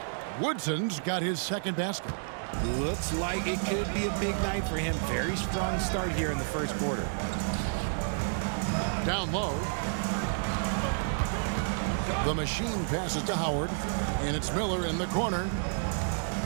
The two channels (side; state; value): left; silent; digital silence